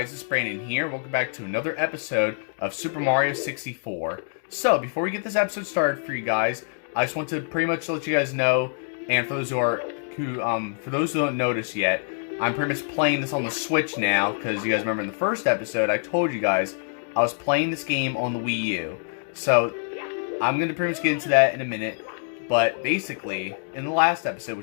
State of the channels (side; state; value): right; silent; digital silence